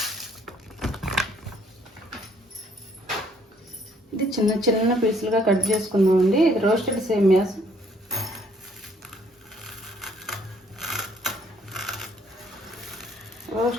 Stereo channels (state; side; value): normal; both; correlation 0.64